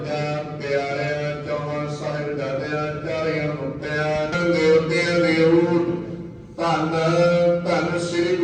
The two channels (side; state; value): both; identical; correlation 1.00